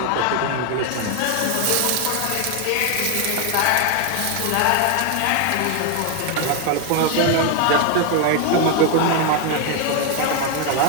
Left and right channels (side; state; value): both; different; correlation 0.01